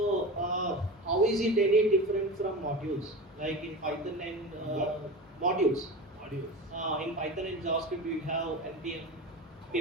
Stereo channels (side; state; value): both; normal; correlation 0.28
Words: how is it any different from modules? Like in Python and modules. Modules. In Python and JavaScript, we have npm,